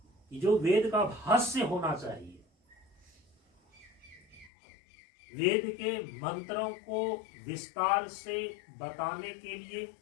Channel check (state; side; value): drops out; right; at 4.5 s